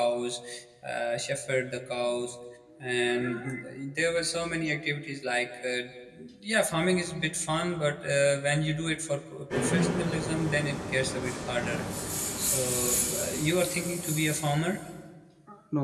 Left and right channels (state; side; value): identical; both; correlation 1.00